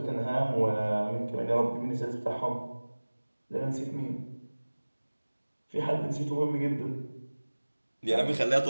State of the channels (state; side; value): inverted; both; correlation -1.00